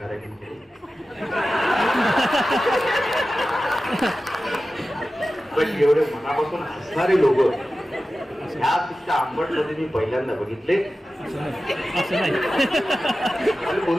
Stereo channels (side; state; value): both; normal; correlation 0.94